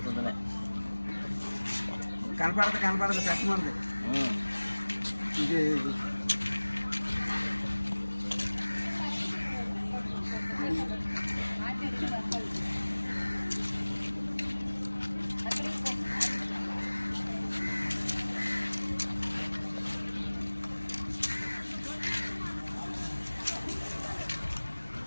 కనపడదు కష్టమంది ఇది.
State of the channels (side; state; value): both; inverted; correlation -1.00